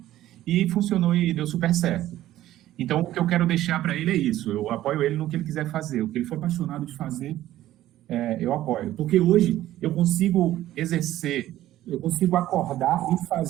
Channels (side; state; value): left; quieter; 14.0 dB